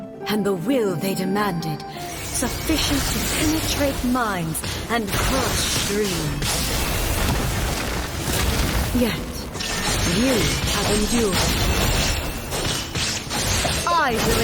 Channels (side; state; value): both; identical; correlation 1.00